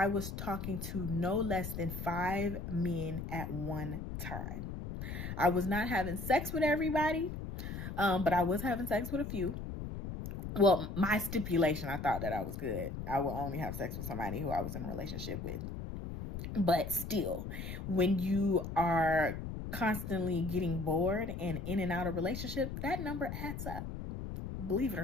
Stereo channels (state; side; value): noise; left; rumble, 6 dB below the sound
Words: was talking to no less than 5 men at one time. I was not having sex with everybody, but I was having sex with a few. Well, my stipulation, I thought that I was good. I will only have sex with somebody who I was in a relationship with. But still, when you are constantly getting bored and in and out of relationship, that number adds up, believe it or